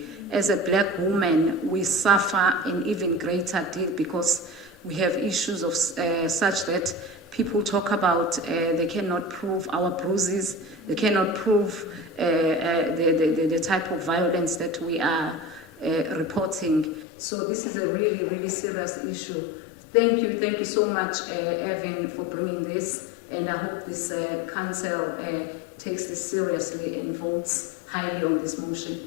As a black woman, we suffer an even greater deal because we have issues of such that people talk about they cannot prove our bruises, they cannot prove the type of violence that we are reporting. So this is a really, really serious issue. Thank you so much, Evan, for bringing this, and I hope this council takes this seriously and votes highly on this motion.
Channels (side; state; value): right; drops out; at 17.1 s